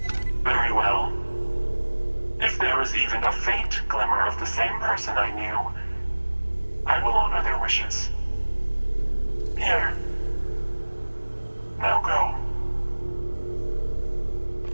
Very well. If there is even a faint glimmer of the same person I knew, I will honor their wishes. Here. Now go.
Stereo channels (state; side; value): inverted; both; correlation -1.00